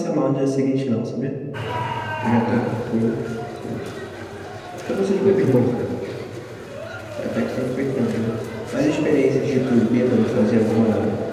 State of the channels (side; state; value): both; identical; correlation 1.00